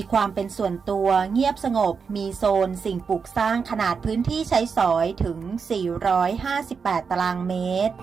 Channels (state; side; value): quieter; left; 5.7 dB